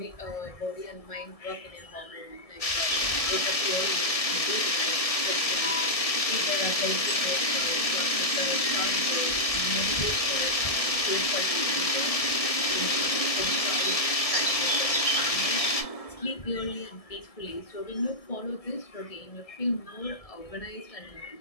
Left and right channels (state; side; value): late; right; 1.7 ms